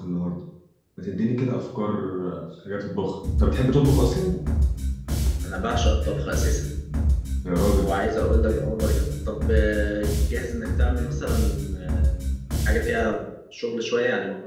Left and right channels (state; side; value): identical; both; correlation 1.00